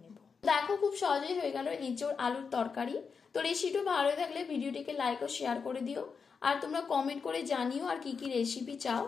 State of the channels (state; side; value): quieter; right; 5.6 dB